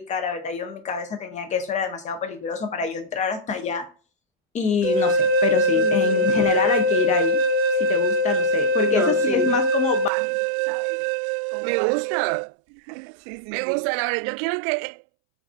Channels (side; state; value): left; drops out; at 10.1 s